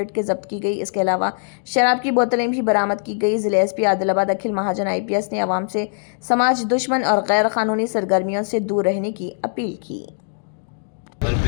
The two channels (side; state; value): right; silent; digital silence